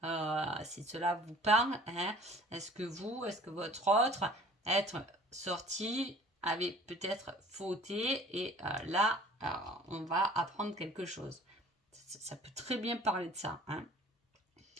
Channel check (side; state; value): both; normal; correlation 0.49